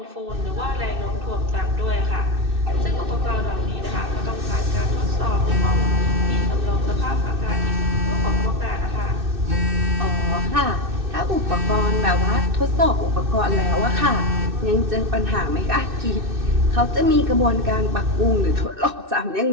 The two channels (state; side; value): late; left; 2.6 ms